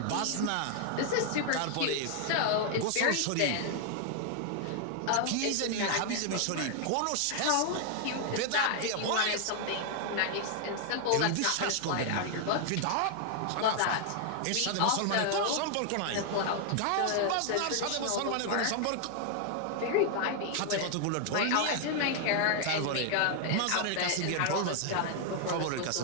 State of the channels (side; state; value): both; different; correlation 0.00